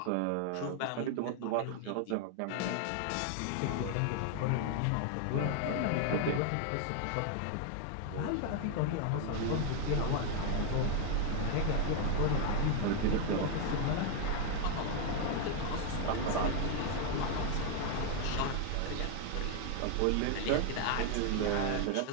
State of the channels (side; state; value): both; different; correlation 0.00